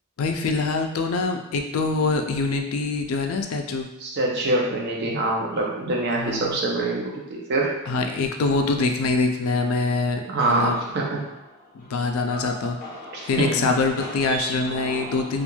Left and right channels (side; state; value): both; normal; correlation 0.17